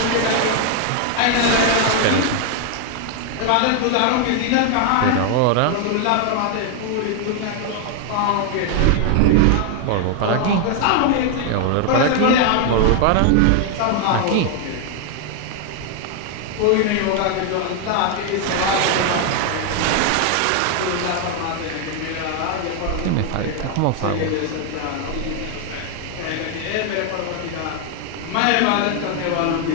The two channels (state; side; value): different; both; correlation 0.00